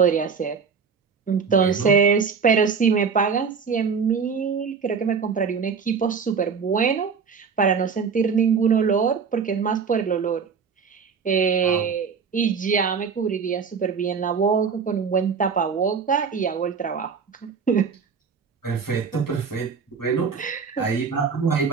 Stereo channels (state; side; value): quieter; left; 5.9 dB